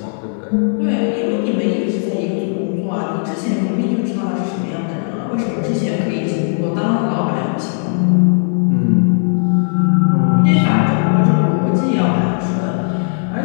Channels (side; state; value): right; silent; digital silence